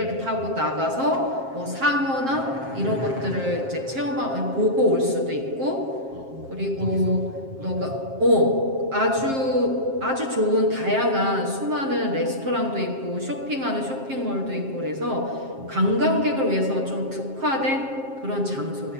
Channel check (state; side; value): late; left; 7.5 ms